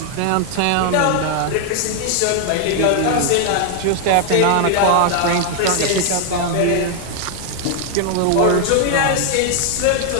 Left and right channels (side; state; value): both; different; correlation 0.00